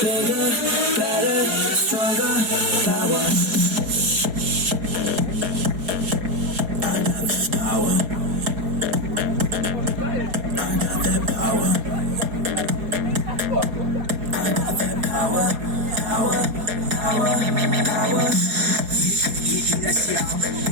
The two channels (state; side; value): late; left; 4.3 ms